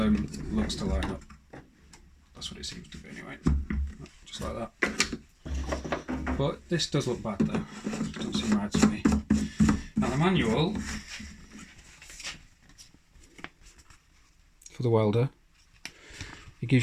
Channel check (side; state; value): both; identical; correlation 1.00